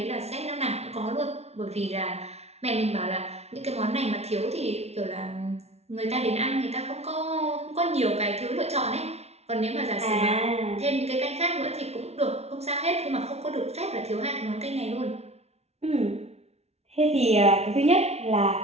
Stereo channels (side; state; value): left; late; 0.31 ms